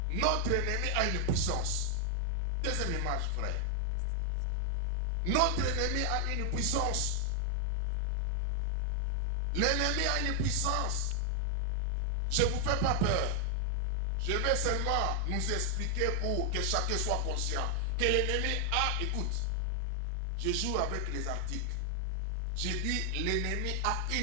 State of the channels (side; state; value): both; different; correlation 0.00